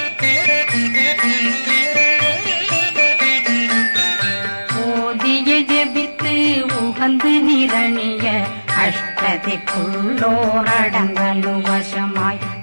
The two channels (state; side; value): inverted; both; correlation -1.00